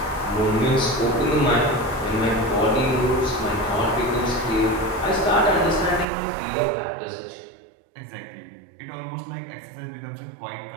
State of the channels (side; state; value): left; drops out; at 6.1 s